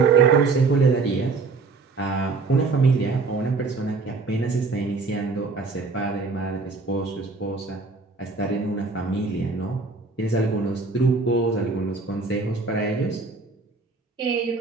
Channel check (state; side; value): quieter; left; 4.1 dB